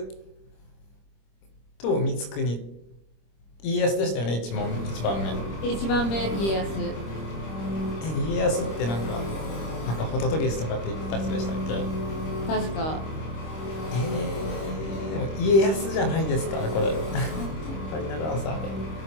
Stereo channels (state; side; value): late; right; 26 ms